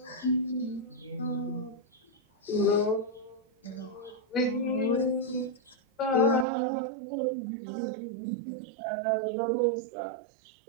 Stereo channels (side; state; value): left; drops out; at 6.5 s